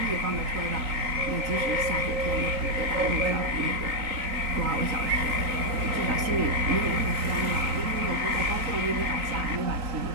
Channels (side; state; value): left; late; 3.9 ms